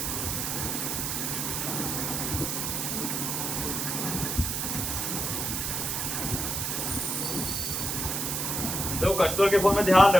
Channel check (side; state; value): right; noise; hiss, 1 dB below the sound